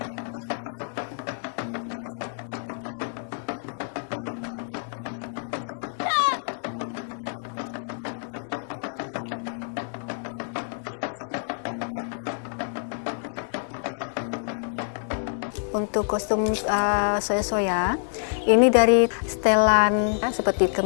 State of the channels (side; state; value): right; silent; 60 dB below the other